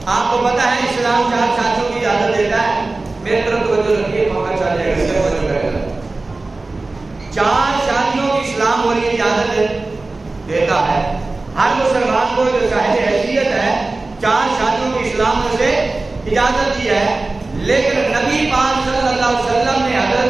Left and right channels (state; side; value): quieter; left; 3.3 dB